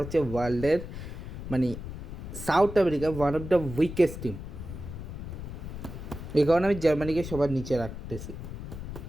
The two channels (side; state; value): left; noise; rumble, 9 dB below the sound